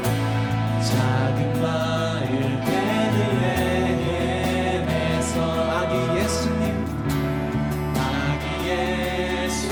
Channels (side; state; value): both; identical; correlation 1.00